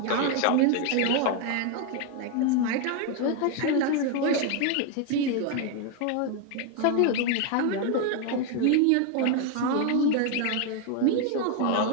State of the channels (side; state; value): both; different; correlation 0.01